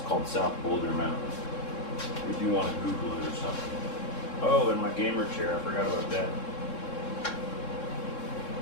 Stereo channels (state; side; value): late; right; 3.7 ms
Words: South Boulder Mountain. If you want to Google it or something. Oh, and my gamer chair, I forgot about that.